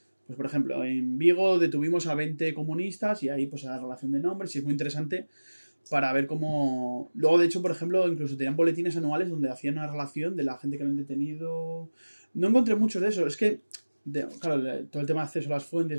pues por ejemplo, en Vigo detuvimos a 20 comunistas y ahí pues a la relación de nombres y es muy interesante para ver cómo... Luego, de hecho, por ejemplo, incluso tenían boletines anuales donde hacían una relación de la gente que habían detenido. No encontré mucho de eso. Es que, claro, todo el tema de acceso a las fuentes,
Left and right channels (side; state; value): both; inverted; correlation -1.00